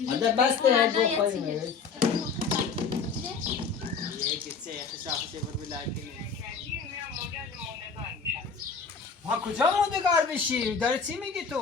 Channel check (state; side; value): quieter; right; 5.4 dB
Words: هذا بس ده بخوریم یکی چه شاخصی بر بلاکی ها کجا موندگار بشی؟ داره چی میگی تو؟